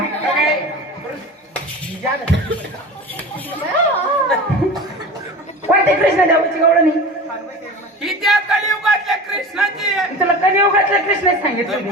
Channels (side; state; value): both; normal; correlation 0.33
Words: कोणते कृष्णदेवाची गावला नाही ही त्या कलियुगातल्या कृष्णाची आहे. तुला कलियुगातल्या कृष्ण सांगितलं तू